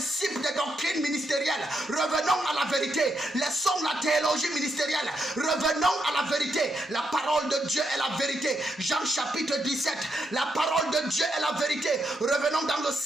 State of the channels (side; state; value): both; normal; correlation 0.81